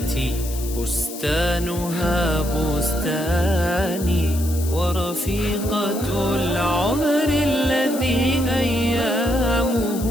بستانها بستاني، ورفيقة العمر الذي أيامه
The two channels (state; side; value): noise; left; hiss, 12 dB below the sound